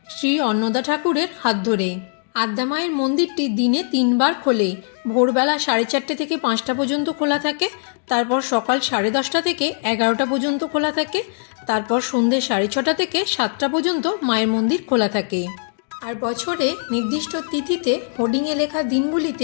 শ্রী অন্নদা ঠাকুরের হাত ধরে। আদ্যামায়ের মন্দিরটি দিনে 3 বার খোলে। ভোরবেলা 4:30 থেকে 5টা পর্যন্ত খোলা থাকে, তারপর সকাল 10:30 থেকে 11টা পর্যন্ত খোলা থাকে, তারপর সন্ধ্যে 6:30 থেকে 7টা পর্যন্ত মায়ের মন্দির খোলা থাকে। আর বছরে নির্দিষ্ট তিথিতে হোর্ডিংয়ে লেখা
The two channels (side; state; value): right; silent; digital silence